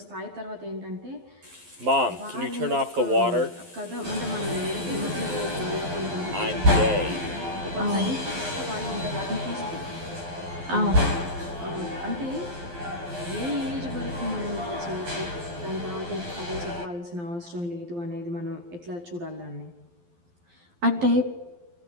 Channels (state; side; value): late; left; 12 ms